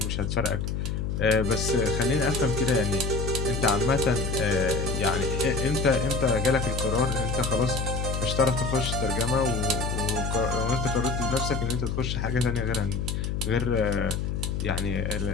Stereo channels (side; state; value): left; noise; hum, 2 dB below the sound